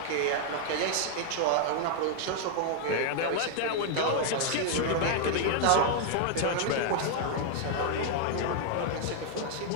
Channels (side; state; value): both; different; correlation 0.00